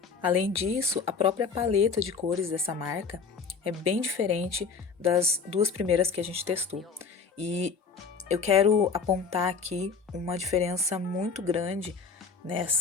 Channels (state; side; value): quieter; right; 5.3 dB